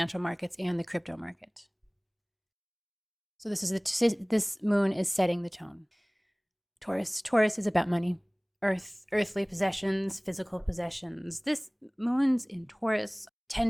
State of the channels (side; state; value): both; identical; correlation 1.00